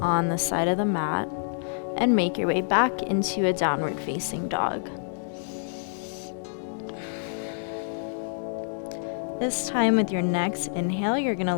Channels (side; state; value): right; silent; digital silence